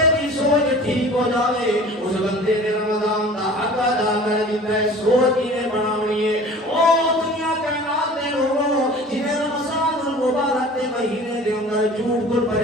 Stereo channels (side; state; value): both; normal; correlation 0.44